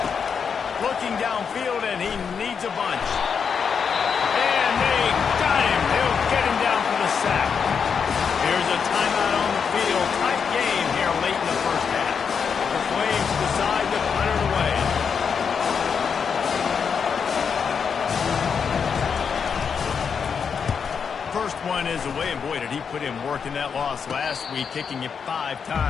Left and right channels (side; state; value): right; quieter; 6.4 dB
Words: Looking downfield, and he needs a bunch. And they got him. They'll get him down for the sack. Here's a timeout on the field. Tight game here late in the first half. The Flames decide to punt it away. First one is away, and boy, did he put in work in that loss last week, kicking it 5